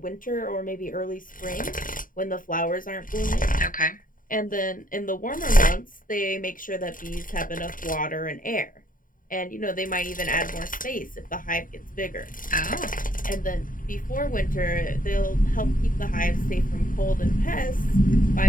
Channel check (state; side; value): late; right; 0.40 ms